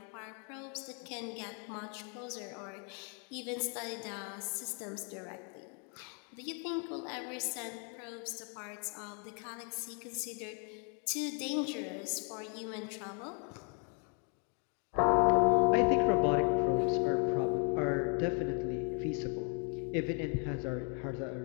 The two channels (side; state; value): right; quieter; 39.0 dB